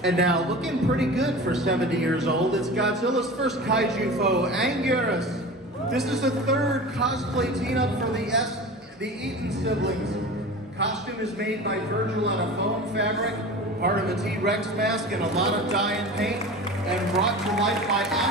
And now, looking pretty good for 70 years old, it's Godzilla's first kaiju foe, Anguirus. This is the third cosplay team-up for the Eaton siblings. Costume is made by Virgil on a foam fabric, part of a T-Rex mask and a lot of dye and paint, and brought to life by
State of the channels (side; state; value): both; normal; correlation 0.34